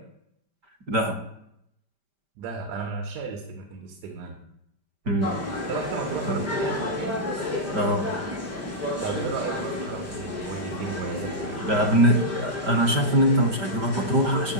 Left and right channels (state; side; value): late; left; 5.1 ms